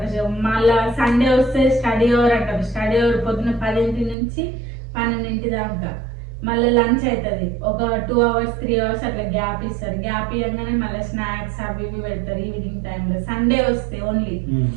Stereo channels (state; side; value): drops out; left; at 4.2 s